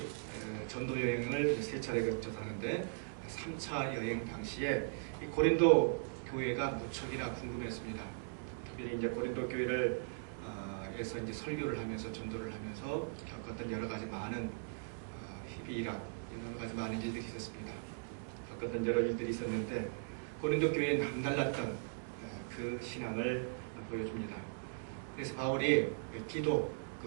전도 여행을 3차례 거쳐서 하는데 3차 여행 당시에 이 고린도 교회가 무척이나 궁금했습니다. 특별히 이제 고린도 교회를 에서 이제 설교를 하면서 전도를 하면서 겪었던 여러 가지 많은 희비이락, 여러 가지 많은 일들이 있었습니다. 겪었던 여러 일들이 있었는데 고린도 교회에 남달랐던 그 신앙을 보여줍니다. 그래서 바울이 디도,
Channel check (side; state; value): left; silent; digital silence